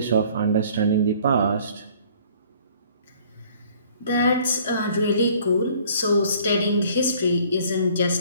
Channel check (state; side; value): inverted; both; correlation -0.55